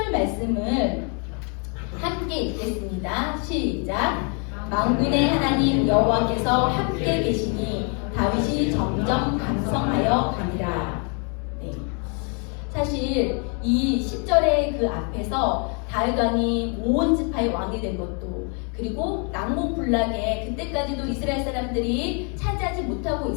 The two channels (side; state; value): right; quieter; 37.2 dB